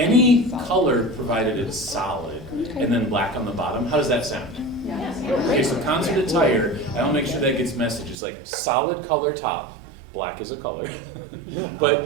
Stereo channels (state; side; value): drops out; left; at 8.2 s